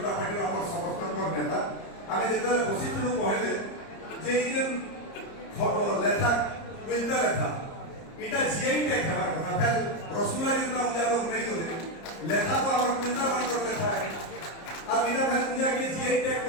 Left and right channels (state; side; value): late; right; 30 ms